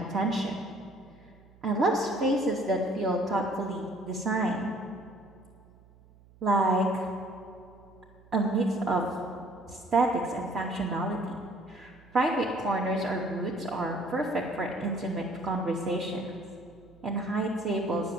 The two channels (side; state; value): right; noise; hum, 26 dB below the sound